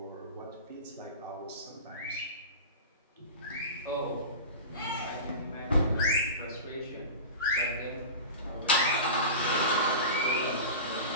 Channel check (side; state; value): both; inverted; correlation -0.30